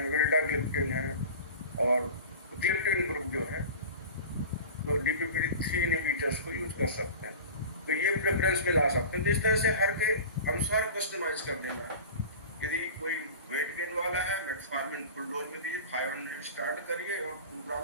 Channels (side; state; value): both; inverted; correlation -0.35